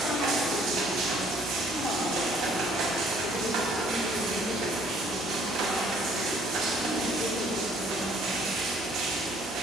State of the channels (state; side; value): normal; both; correlation 0.60